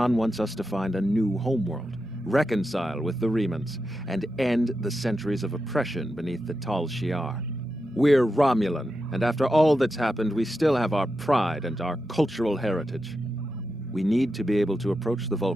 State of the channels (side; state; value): both; normal; correlation 0.88